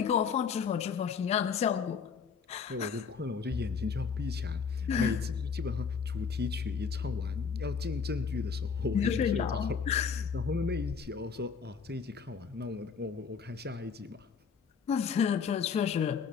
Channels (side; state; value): right; quieter; 6.0 dB